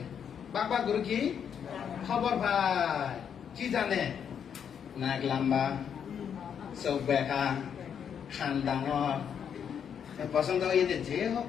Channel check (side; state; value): right; quieter; 7.9 dB